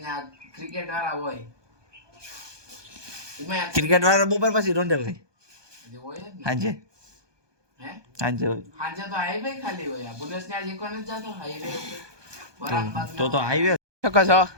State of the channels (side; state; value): left; late; 1.2 ms